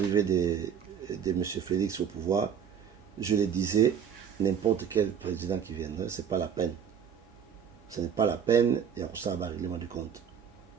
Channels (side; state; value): left; quieter; 7.8 dB